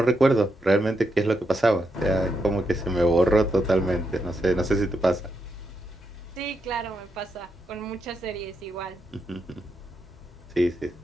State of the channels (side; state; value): both; normal; correlation 0.82